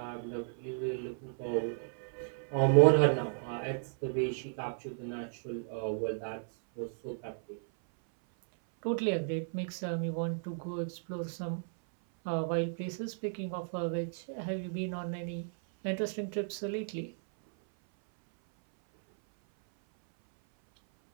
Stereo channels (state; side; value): silent; left; 55 dB below the other